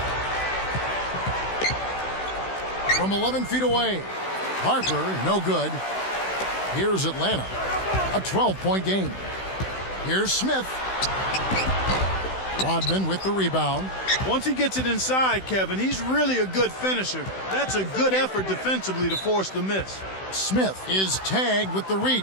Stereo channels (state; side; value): late; right; 16 ms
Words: From 11 feet away. Harper, no good. Here's Atlanta. A 12-point game. Here's Smith. Rodman with the rebound. Once he gets it inside, Kevin, he's really a good finisher. That's a good effort defensively to force the miss. Smith is tagged with the